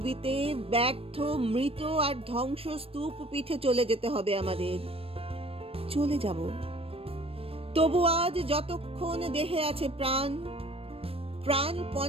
ব্যর্থ মৃত আর ধ্বংসস্তূপ পিঠে চলে যেতে হবে আমাদের। চলে যাব, তবু আজ যতক্ষণ দেহে আছে প্রাণ,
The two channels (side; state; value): left; late; 0.28 ms